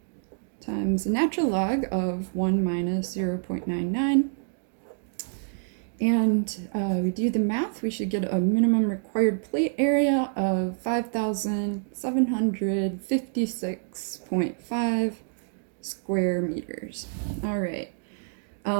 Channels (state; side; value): silent; left; digital silence